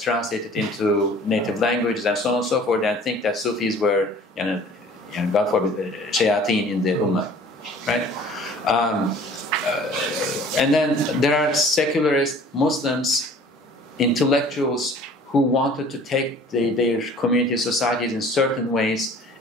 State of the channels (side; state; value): both; normal; correlation 0.49